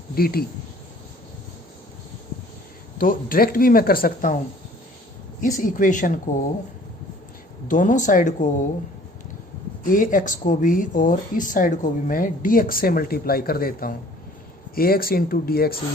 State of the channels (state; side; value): normal; both; correlation 0.53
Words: dt, तो डायरेक्ट भी मैं कर सकता हूं। इस इक्वेशन को दोनों साइड को ax को भी और इस साइड को भी मैं dx से मल्टीप्लाई कर देता हूँ। ax into d x is